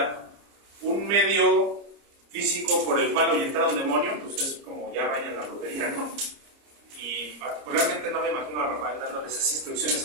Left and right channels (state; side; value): late; left; 30 ms